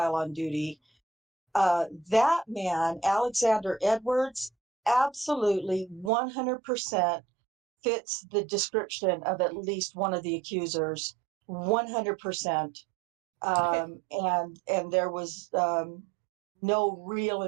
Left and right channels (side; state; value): left; drops out; at 6.1 s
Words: on duty. That man, Alexander Edwards, absolutely 100% fits the description of at least one of the accusers. 100%. And there was no real